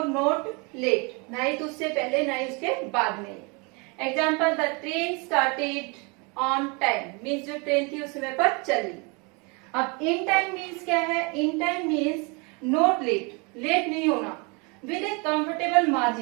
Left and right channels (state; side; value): quieter; left; 30.7 dB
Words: नॉट लेट, ना ही तो उससे पहले ना ही उसके बाद में। Example, the train started on time means जो ट्रेन थी उस समय पर चली। अब इन टाइम मीन्स क्या है? In time means not late, late नहीं होना। With a comfortable